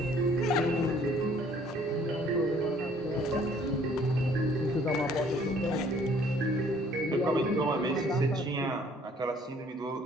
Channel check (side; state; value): both; normal; correlation 0.59